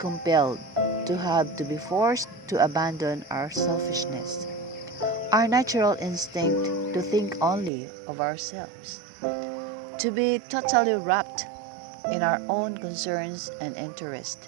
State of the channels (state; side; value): drops out; left; at 7.7 s